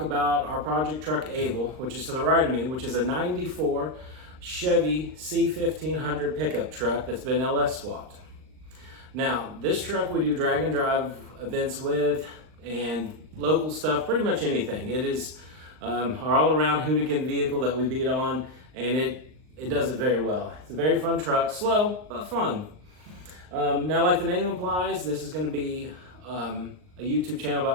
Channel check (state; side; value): late; left; 39 ms